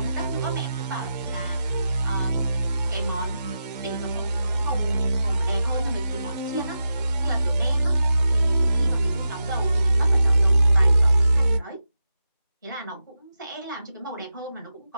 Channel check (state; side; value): inverted; both; correlation -0.90